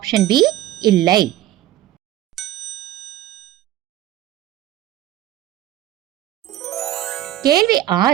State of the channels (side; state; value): left; quieter; 13.6 dB